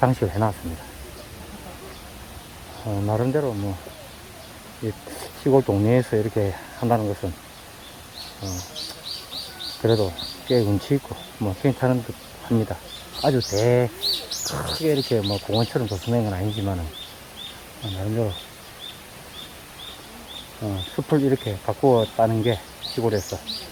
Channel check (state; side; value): identical; both; correlation 1.00